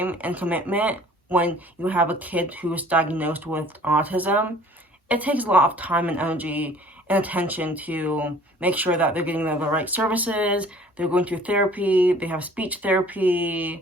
and commitment when you have a kid who is diagnosed with autism. It takes a lot of time and energy and attention to make sure that they're getting the right services, they're going to therapy, they have speech therapy,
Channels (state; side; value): normal; both; correlation 0.52